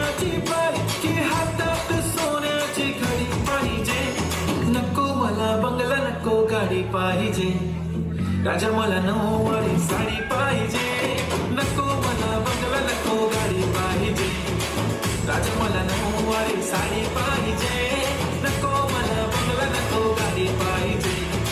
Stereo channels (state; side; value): identical; both; correlation 1.00